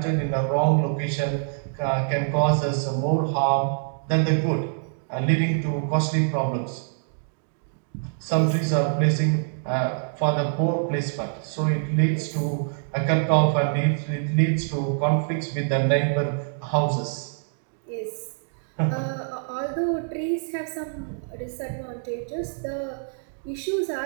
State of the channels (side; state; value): left; silent; digital silence